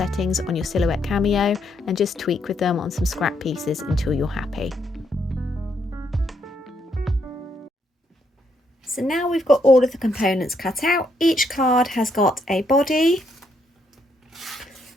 on your Silhouette Cameo and just tweak with them on some scrap pieces until you're happy. So now we've got all of the components cut out. Each card has got a body,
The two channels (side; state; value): both; normal; correlation 0.75